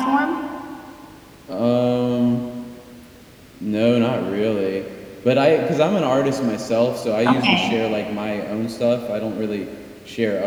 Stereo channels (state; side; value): identical; both; correlation 1.00